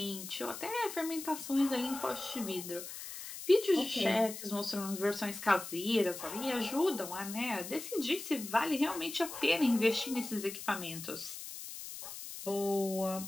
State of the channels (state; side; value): noise; left; hiss, 10 dB below the sound